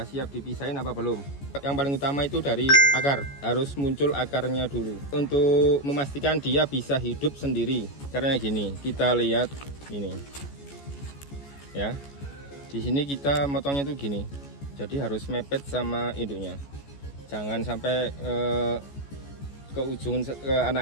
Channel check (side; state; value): right; late; 14 ms